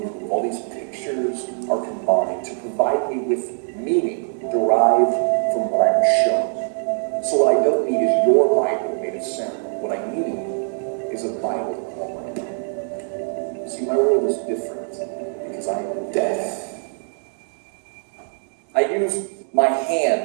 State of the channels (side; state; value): left; silent; digital silence